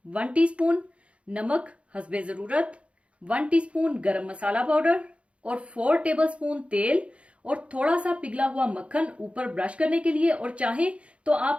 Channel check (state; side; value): late; left; 0.061 ms